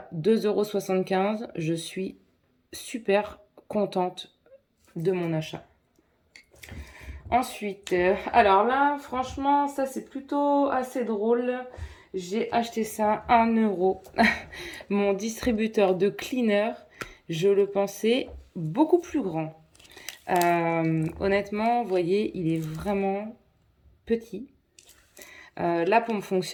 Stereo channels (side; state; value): both; identical; correlation 1.00